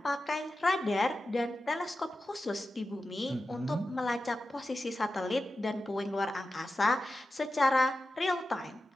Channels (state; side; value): normal; both; correlation 0.92